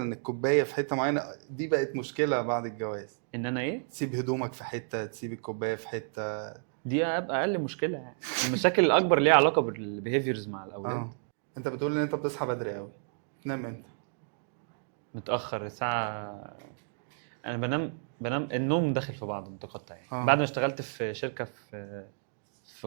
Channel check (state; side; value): silent; left; digital silence